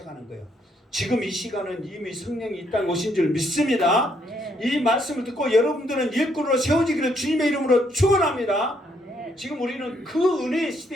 거예요. 지금 이 시간은 이미 성령이 이 땅에 오신 줄 믿습니다. 아멘. 이 말씀을 듣고 여러분들은 일꾼으로 세워지기를 주님의 이름으로 축원합니다. 아멘. 지금 우리는 그 은혜의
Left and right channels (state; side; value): normal; both; correlation 0.72